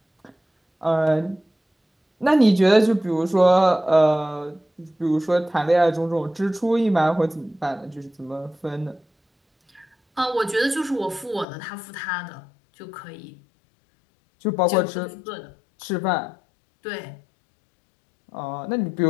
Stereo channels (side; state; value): right; drops out; at 11.5 s